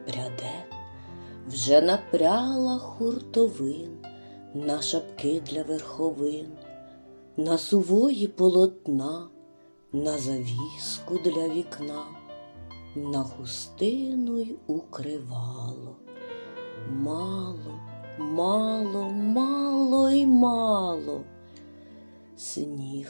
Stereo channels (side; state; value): both; inverted; correlation -1.00